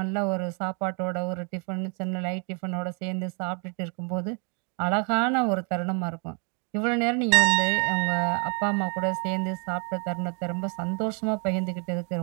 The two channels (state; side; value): quieter; left; 37.7 dB